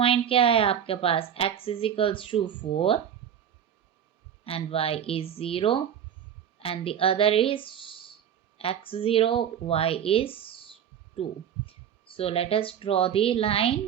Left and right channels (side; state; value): left; quieter; 9.0 dB